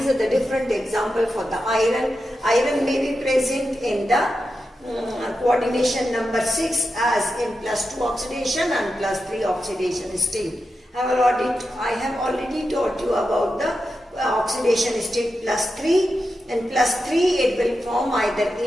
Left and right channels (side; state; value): both; normal; correlation 0.89